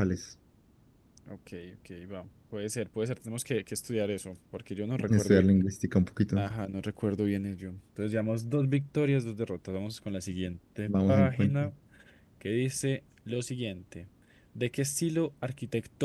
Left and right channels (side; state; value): both; identical; correlation 1.00